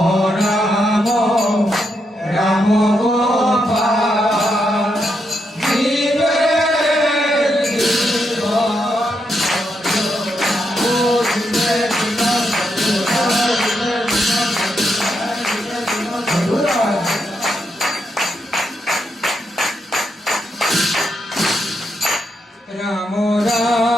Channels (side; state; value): both; normal; correlation 0.81